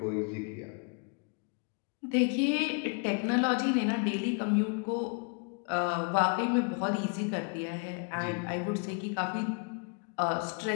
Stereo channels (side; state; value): right; quieter; 37.5 dB